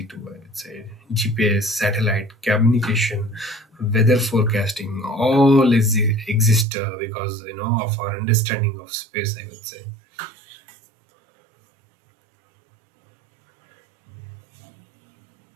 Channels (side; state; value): left; drops out; at 6.7 s